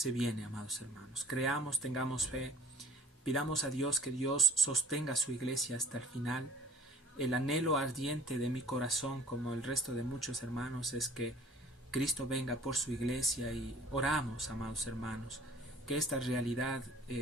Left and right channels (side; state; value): both; normal; correlation 0.51